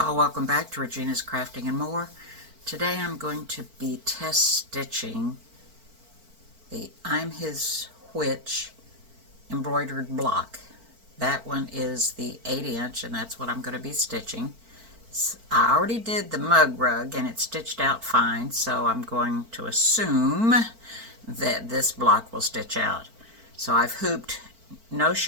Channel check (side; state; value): left; late; 4.5 ms